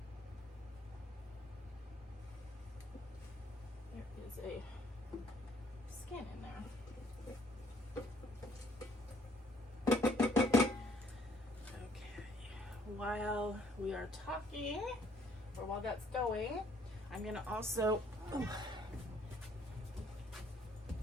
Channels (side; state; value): both; normal; correlation 0.63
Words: There is a skin in there. While we are talking, or while that's going, I'm gonna also